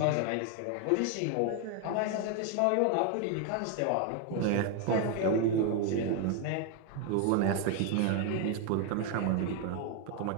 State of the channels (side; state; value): both; different; correlation 0.01